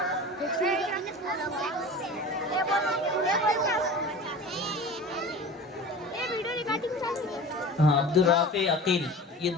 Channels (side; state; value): both; normal; correlation 0.36